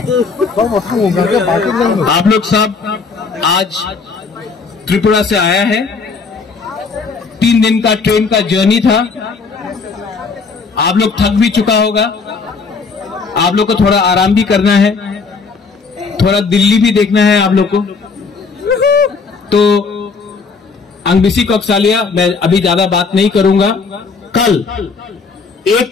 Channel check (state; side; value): quieter; right; 4.8 dB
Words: आप लोग सब आज त्रिपुरा से आया है। 3 दिन का ट्रेन का जर्नी था। आप लोग थक भी चुका होगा। आप लोग को थोड़ा आराम भी करना है, थोड़ा दिल्ली भी देखना है आप लोग को। तो अंगबिसी कोकसालिया मैं अभी ज्यादा बात नहीं करूंगा। कल